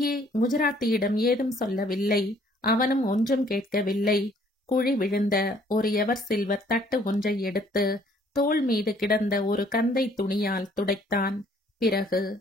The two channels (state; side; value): normal; both; correlation 0.61